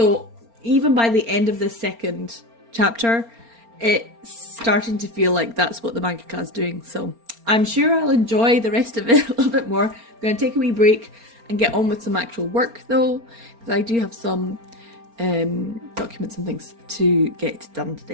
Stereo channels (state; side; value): late; left; 4.3 ms